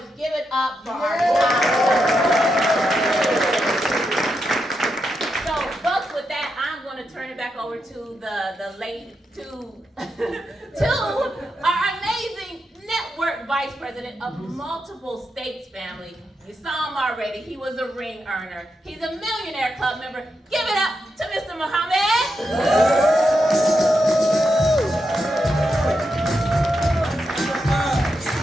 Give it up for our top. So, folks, with that, I'm going to turn it back over to to our amazing network vice president of multiple states family. You saw him already. He was a ring earner. He's a Millionaire Club member. Give it up to Mr. Muhammad.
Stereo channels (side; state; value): both; normal; correlation 0.85